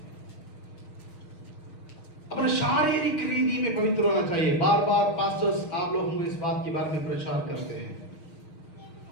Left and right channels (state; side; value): late; right; 6.4 ms